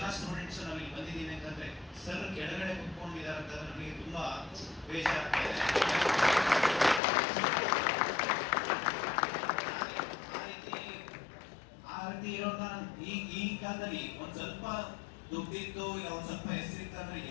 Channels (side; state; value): right; drops out; at 7.0 s